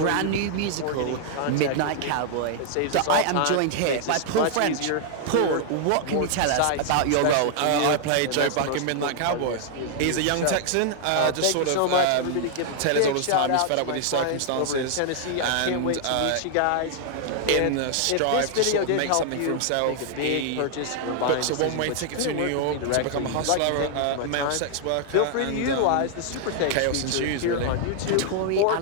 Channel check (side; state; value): both; different; correlation 0.00